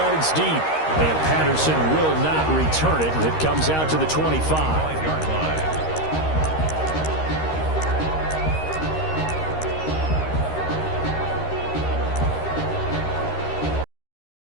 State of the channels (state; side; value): late; right; 13 ms